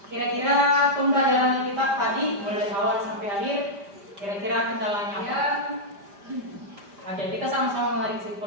kira-kira pembelajaran kita tadi mulai dari awal sampai akhir, kira-kira kendalanya apa? Oke, kita sama-sama menarik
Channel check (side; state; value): left; late; 5.0 ms